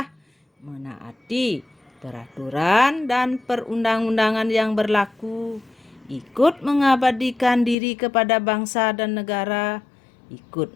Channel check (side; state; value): right; drops out; at 7.8 s